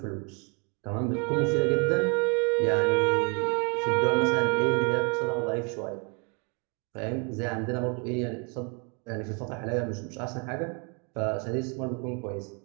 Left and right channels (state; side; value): quieter; left; 34.7 dB